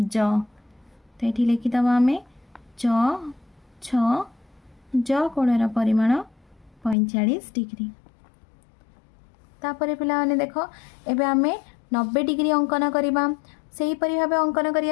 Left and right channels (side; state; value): right; drops out; at 7.0 s